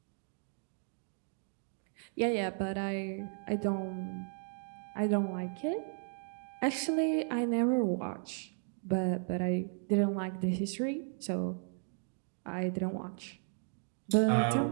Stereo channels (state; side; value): silent; left; 54 dB below the other